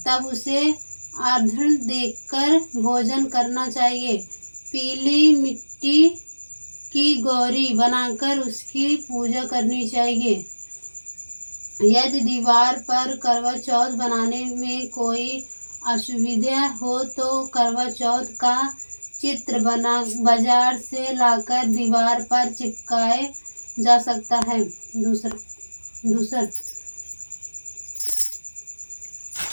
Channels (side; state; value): both; inverted; correlation -1.00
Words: उसे अर्घ्य देकर भोजन करना चाहिए। पीली मिट्टी की गौरी बनाकर उसकी पूजा करनी चाहिए। यदि दीवार पर करवा चौथ बनाने में कोई असुविधा हो तो करवा चौथ का चित्र बाजार से लाकर दीवार पर चिपकाए जा सकता है। दूसरा